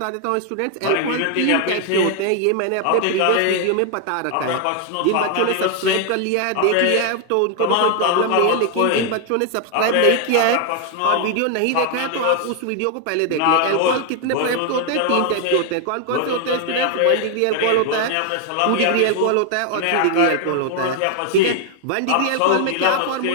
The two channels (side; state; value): both; different; correlation 0.00